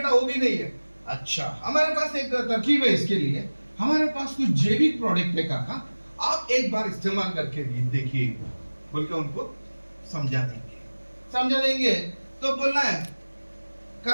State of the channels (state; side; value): inverted; both; correlation -1.00